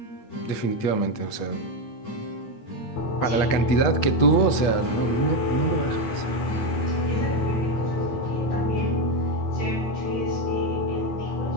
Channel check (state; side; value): late; right; 8.4 ms